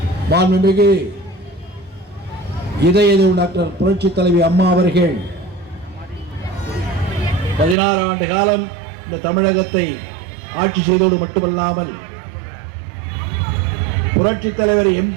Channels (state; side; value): drops out; left; at 7.8 s